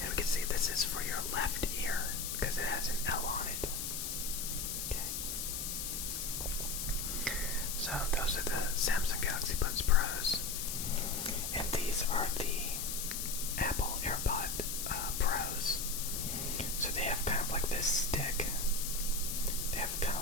we can see this is for your left ear because it has an L on it. Okay. So those are the Samsung Galaxy Buds Pros. And these are the Apple AirPod Pros. So they have kind of like this stick. They have kind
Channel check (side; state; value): left; noise; hiss, 3 dB below the sound